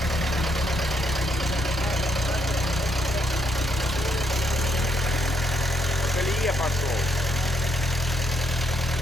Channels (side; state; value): both; normal; correlation 0.74